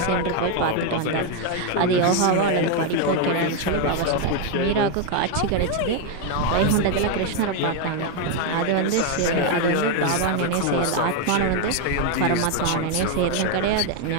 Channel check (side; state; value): both; different; correlation 0.01